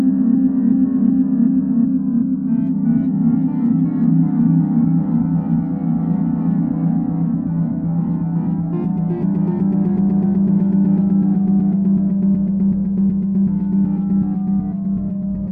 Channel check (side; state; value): both; identical; correlation 1.00